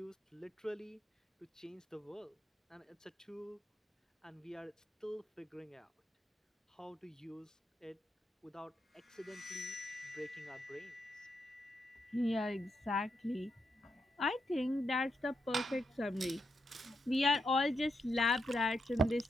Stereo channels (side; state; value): both; normal; correlation 0.83